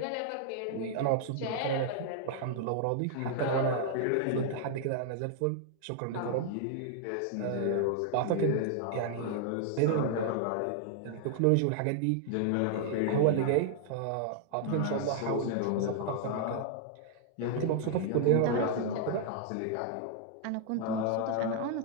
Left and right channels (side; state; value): both; different; correlation -0.01